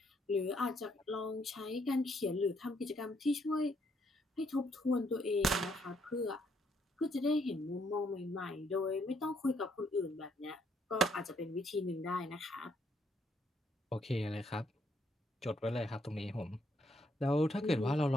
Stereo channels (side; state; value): both; normal; correlation 0.71